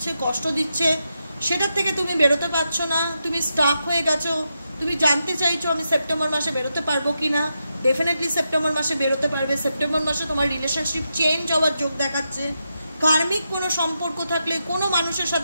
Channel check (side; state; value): both; inverted; correlation -0.86